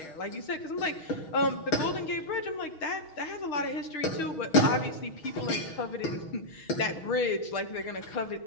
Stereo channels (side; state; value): right; late; 6.3 ms